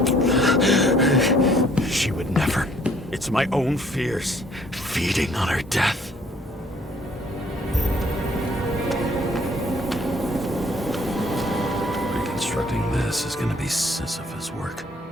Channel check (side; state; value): both; normal; correlation 0.61